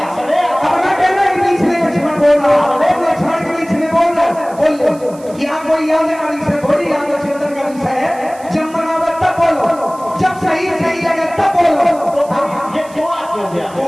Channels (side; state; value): right; noise; hiss, 23 dB below the sound